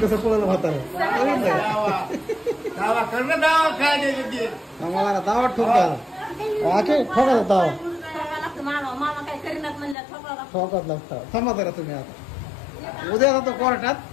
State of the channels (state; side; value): drops out; right; at 10.0 s